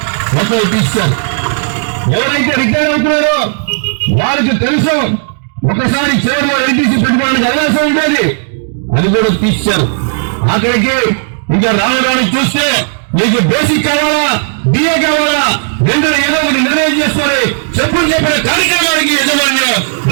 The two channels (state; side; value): silent; left; digital silence